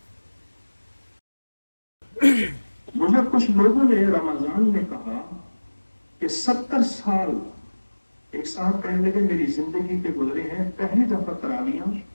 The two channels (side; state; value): both; inverted; correlation -1.00